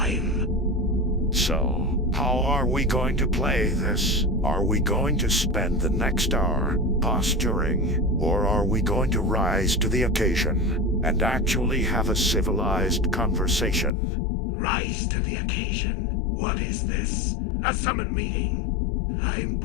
So, how are we going to play this? Are we going to spend the next hour posturing, or are we going to rise to the occasion and actually have a civilized conversation? Rise to the occasion. What is this? A summon meeting? I'm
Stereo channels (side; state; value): right; drops out; at 13.9 s